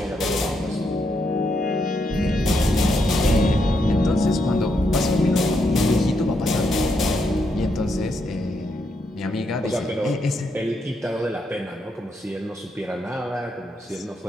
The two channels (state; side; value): normal; both; correlation 0.79